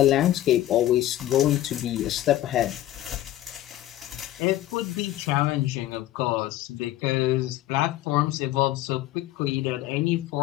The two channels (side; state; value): right; quieter; 14.4 dB